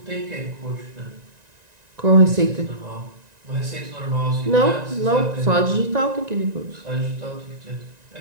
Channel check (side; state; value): left; late; 1.9 ms